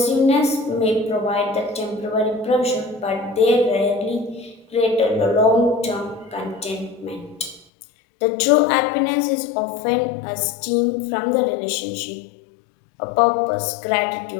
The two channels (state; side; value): drops out; right; at 7.7 s